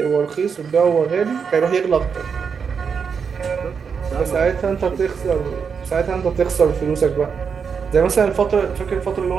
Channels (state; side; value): quieter; left; 6.2 dB